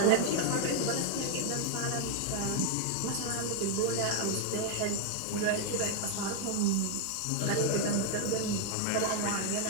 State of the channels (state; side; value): different; both; correlation 0.00